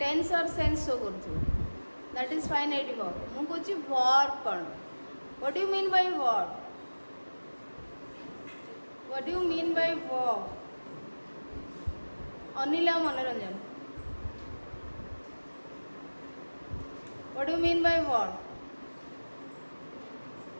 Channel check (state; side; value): inverted; both; correlation -1.00